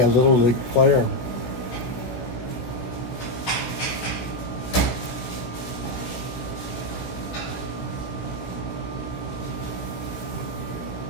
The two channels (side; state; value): right; late; 16 ms